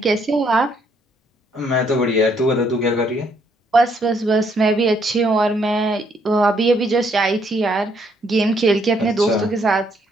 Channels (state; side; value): normal; both; correlation 0.70